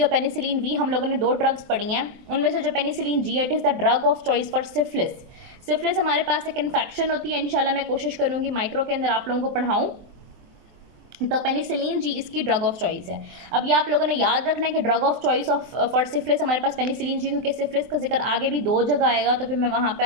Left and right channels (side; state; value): left; late; 23 ms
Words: पेनिसिलिन वी हम लोगों ने 2 ड्रग्स पढ़ी हैं, उनमें से जो penicillin G it is the drug of choice for syphilis. Syphilis हमारे पास एक इन्फेक्शन होती है, इंशाल्लाह मैं कोशिश करूँगी माइक्रो के अंदर आप लोगों को पढ़ाऊँ, तो पेनिसिलिन जी इसकी ड्रग ऑफ चॉइस है। अब ये आप लोगों ने याद रखना है कि drug of choice of for syphilis हमारे पास पेनिसिलिन जी, क्योंकि सिफिलिस का जिक्र आगे भी 2 जगह आएगा, तो फिर मैं वहाँ पे